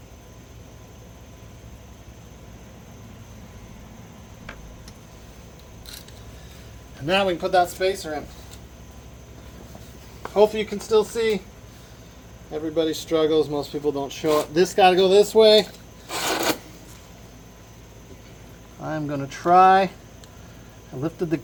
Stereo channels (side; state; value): both; identical; correlation 1.00